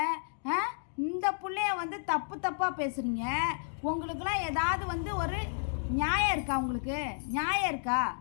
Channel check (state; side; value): silent; right; digital silence